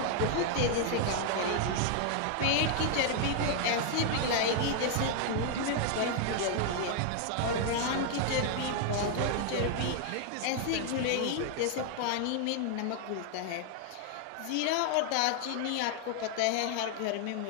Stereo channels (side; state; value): both; different; correlation 0.00